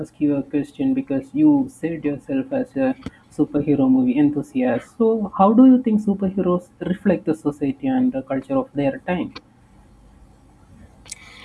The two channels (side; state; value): both; identical; correlation 1.00